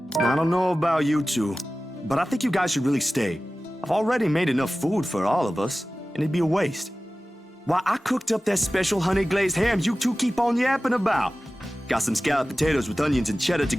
I don't know about you two, but I think you guys should really stay. I've already made enough food for all of us, and it'd be a waste. Why, I cooked up that special honey glazed ham you two keep on yapping about. Got some scalloped potatoes with onions and cheddar to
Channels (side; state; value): both; normal; correlation 0.96